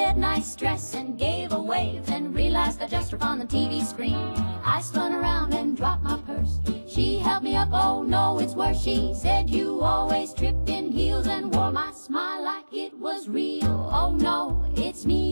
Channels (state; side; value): inverted; both; correlation -1.00